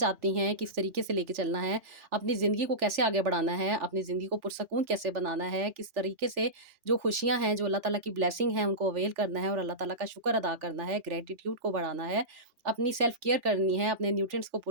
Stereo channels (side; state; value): left; late; 3.4 ms